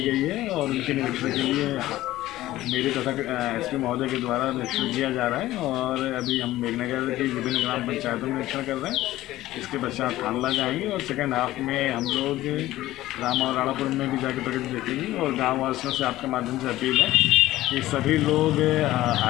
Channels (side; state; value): right; quieter; 15.8 dB